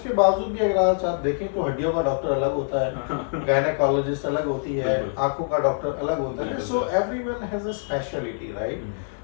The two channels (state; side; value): silent; right; digital silence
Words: बावजूद भी अगर आज आप देखें तो हड्डियों का डॉक्टर अलग होता है, गायनेकोलॉजिस्ट अलग होती है, बिल्कुल। आंखों का डॉक्टर अलग होता है। बिल्कुल so sir. Everyone has a speciality, right? हैं।